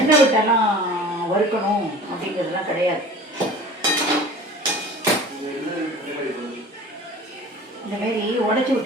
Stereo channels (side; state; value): both; normal; correlation 0.42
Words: விட்டெல்லாம் வறுக்கணும் அப்படிங்கிறதுலாம் கிடையாது. இந்தமாரி உடச்சி